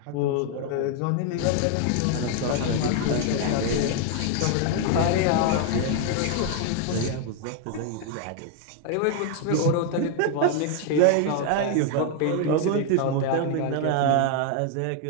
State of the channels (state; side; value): different; both; correlation 0.00